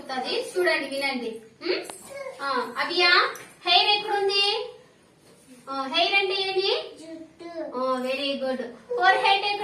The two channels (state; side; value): identical; both; correlation 1.00